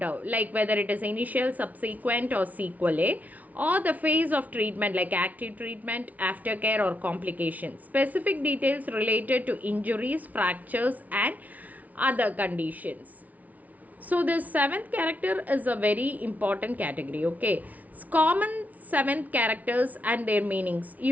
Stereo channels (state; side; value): late; left; 0.074 ms